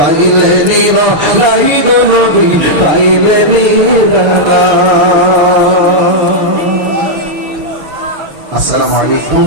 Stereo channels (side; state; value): left; late; 6.5 ms